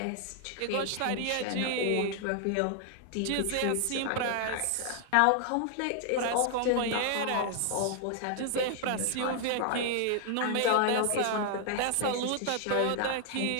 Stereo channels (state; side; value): different; both; correlation 0.00